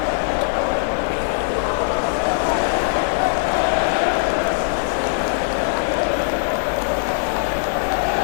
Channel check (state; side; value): silent; right; digital silence